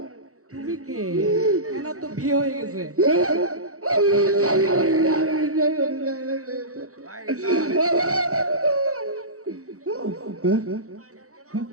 তুমি কে? এনার তো বিয়ে হয়ে গেছে।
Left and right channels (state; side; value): late; left; 0.65 ms